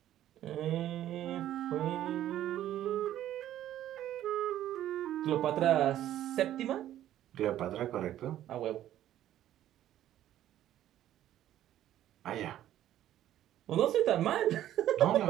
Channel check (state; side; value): quieter; left; 12.4 dB